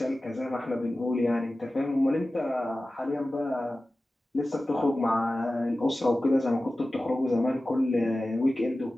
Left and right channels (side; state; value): both; normal; correlation 0.95